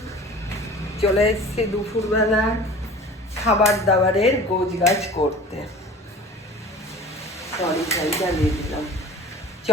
চলে এসেছি দুপুরবেলা খাবার দাবারের গোছগাছ করতে। সরি জ্বালিয়ে দিলাম।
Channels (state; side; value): normal; both; correlation 0.41